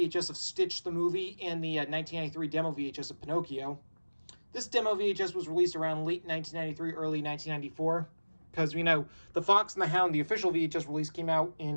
of Stitch the movie and the 1993 demo VHS of Pinocchio. This demo VHS was released around late 1993, early 1994, because we know The Fox and the Hound, the official VHS release, came out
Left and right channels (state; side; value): inverted; both; correlation -1.00